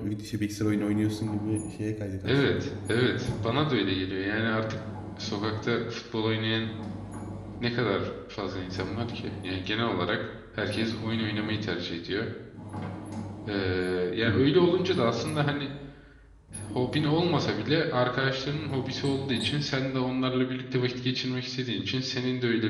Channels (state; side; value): identical; both; correlation 1.00